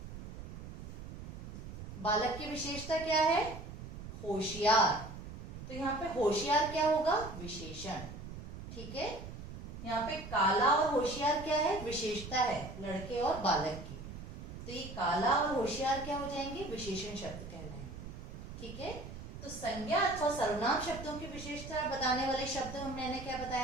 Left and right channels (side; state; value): right; noise; rumble, 11 dB below the sound